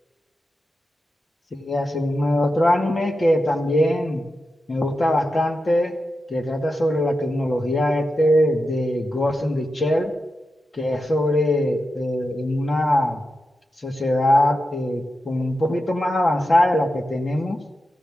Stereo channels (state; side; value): normal; both; correlation 0.90